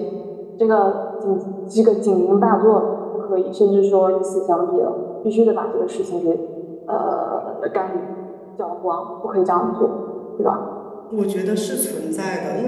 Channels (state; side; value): identical; both; correlation 1.00